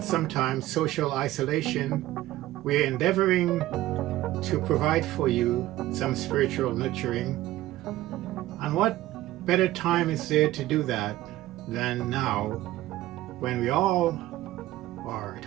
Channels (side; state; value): left; quieter; 15.7 dB